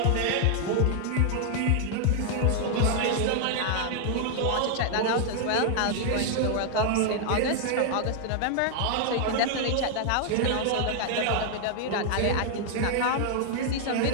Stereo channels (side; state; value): both; different; correlation 0.00